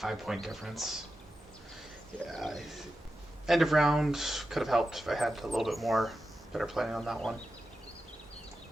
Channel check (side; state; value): both; normal; correlation 0.91